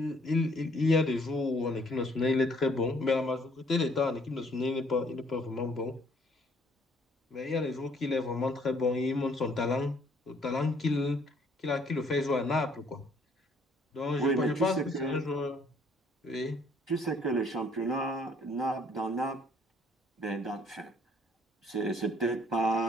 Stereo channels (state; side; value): normal; both; correlation 0.63